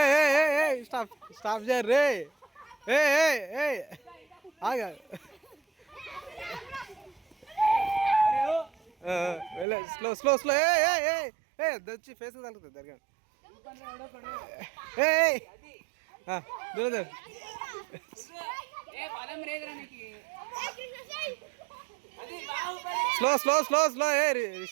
స్టాప్ స్టాప్ చేయరు రే. ఆగా స్లో స్లో స్లో. వచ్చి ఫేస్ తగ్గుతుంది దగ్గర. దూరం slow slow slow slow.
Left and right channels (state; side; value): drops out; left; at 9.7 s